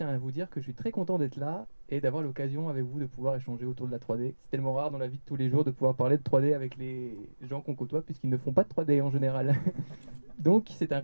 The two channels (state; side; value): inverted; both; correlation -1.00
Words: à vous dire que je suis très content d'être là et d'avoir l'occasion avec vous de pouvoir échanger autour de la 3D. C'est tellement rare dans la vie de tous les jours de pouvoir parler de 3D avec les gens qu'on côtoie puisqu'ils ne font pas de 3D en général. Donc, c'est un